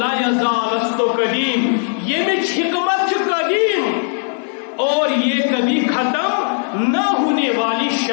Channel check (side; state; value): right; silent; 62 dB below the other